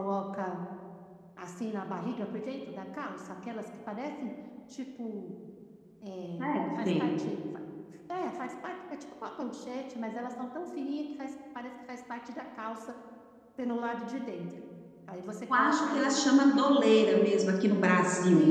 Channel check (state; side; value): identical; both; correlation 1.00